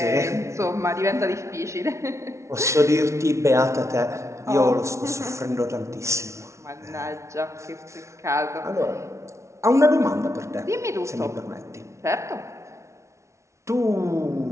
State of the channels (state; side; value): late; left; 0.14 ms